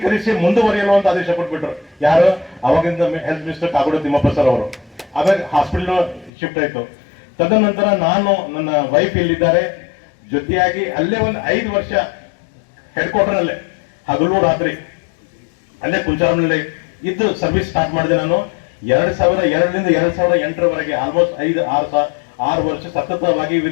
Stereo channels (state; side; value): drops out; right; at 6.3 s